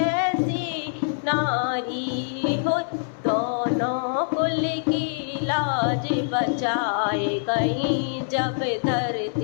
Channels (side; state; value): right; silent; 62 dB below the other